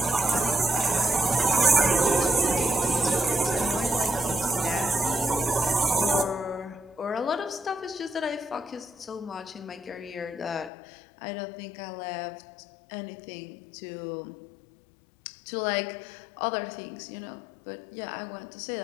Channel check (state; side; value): drops out; right; at 10.7 s